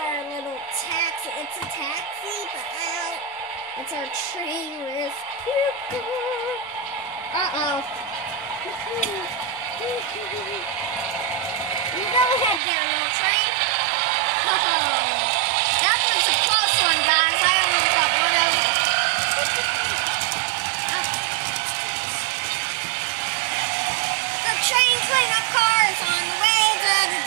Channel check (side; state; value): left; drops out; at 12.6 s